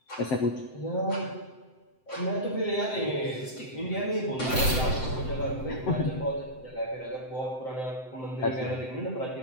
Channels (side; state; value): right; late; 7.8 ms